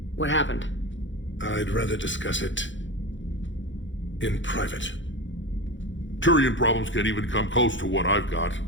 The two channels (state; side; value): late; right; 0.55 ms